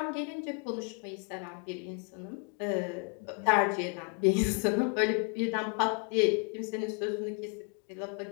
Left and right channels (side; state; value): right; quieter; 35.8 dB